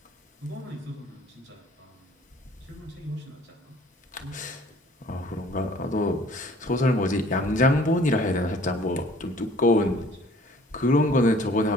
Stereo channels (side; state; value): both; normal; correlation 0.54